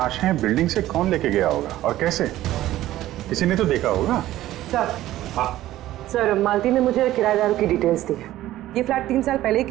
बिल्डिंग से कौन लेके गया होगा और कैसे? किसी ने तो देखा होगा। सर, सर मालती ने मुझे किराएदारों की डिटेल्स दी। ये फ्लैट 3 साल पहले ही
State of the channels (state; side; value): quieter; left; 14.6 dB